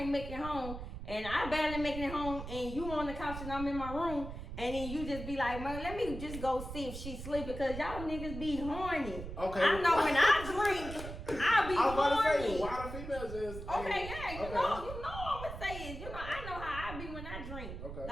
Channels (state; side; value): noise; right; rumble, 9 dB below the sound